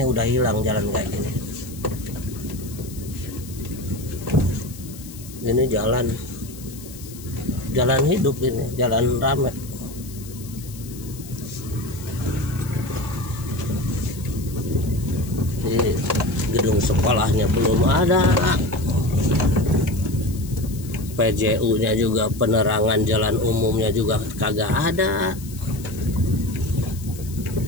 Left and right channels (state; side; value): noise; left; hiss, 17 dB below the sound